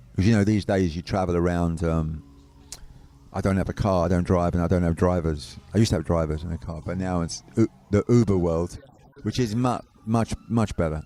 Because, these days you travel around. I don't have a car, I don't drive, and I don't have drivers. I used to have drivers in a car, but now it's the Uber world, which is much better,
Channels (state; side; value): identical; both; correlation 1.00